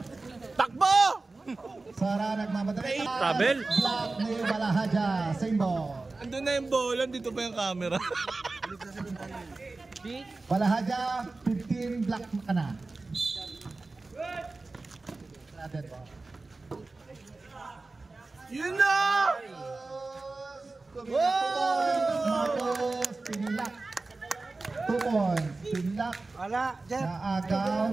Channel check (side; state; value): left; quieter; 3.5 dB